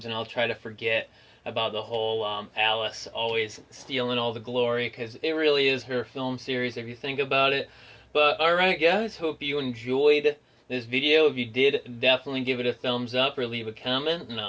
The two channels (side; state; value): both; identical; correlation 1.00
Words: and I'll try to forget about the whole Alice always stealing all the glory, because it really is her film series if you think about it. But alright guys, hope you enjoyed this video. If you did, definitely give it a thumbs up or leave a comment, and